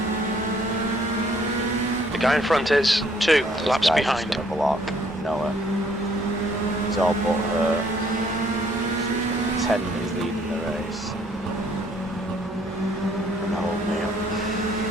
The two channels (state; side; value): normal; both; correlation 0.64